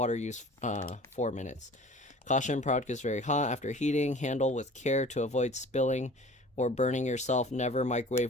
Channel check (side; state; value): both; normal; correlation 0.44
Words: use 4 minutes. Caution, product is very hot after heating. Handle with care to avoid spilling or burning yourself. Never